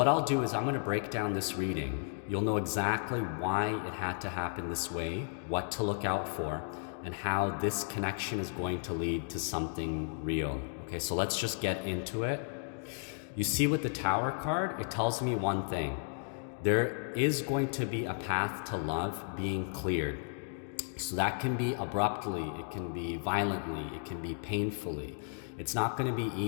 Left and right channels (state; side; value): silent; right; 55 dB below the other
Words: I'll do is I'm gonna break down this reading. You'll know exactly why it had to happen this way, what to look out for, and how this connection is going to lead to something real. Okay, so let's just get into it. You see with the Tower card, it tells me one thing. There is going to be a path to love being cleared. So that can be abruptly, it can be violently, it can be painfully. It's not going to be